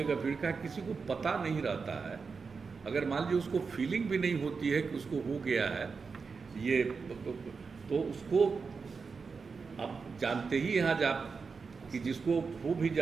भीड़ का किसी को पता नहीं रहता है, अगर मान लीजिए उसको फीलिंग भी नहीं होती है कि उसको हो गया है ये, तो उसको आप जानते ही यहाँ जा कि जिसको हो भी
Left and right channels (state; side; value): quieter; left; 5.0 dB